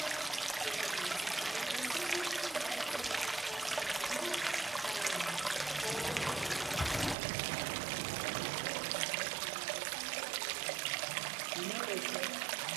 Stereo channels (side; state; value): left; drops out; at 7.2 s